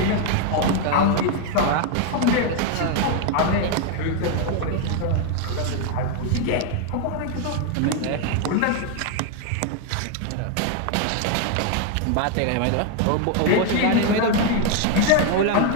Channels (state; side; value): different; both; correlation 0.01